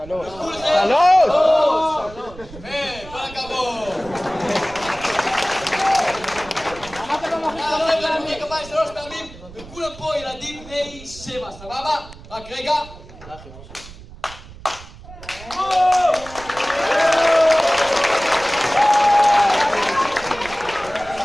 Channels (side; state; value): right; noise; rumble, 18 dB below the sound